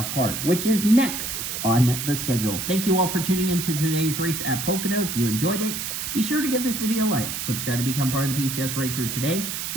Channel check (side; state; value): right; noise; hiss, 4 dB below the sound